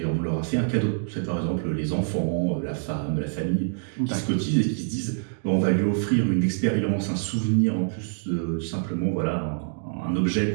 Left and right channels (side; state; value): left; silent; digital silence